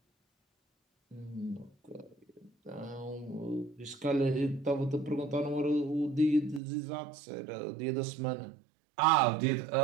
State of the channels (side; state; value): left; drops out; at 6.6 s